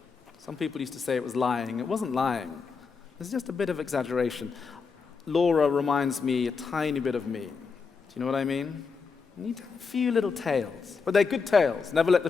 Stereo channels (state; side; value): quieter; right; 5.1 dB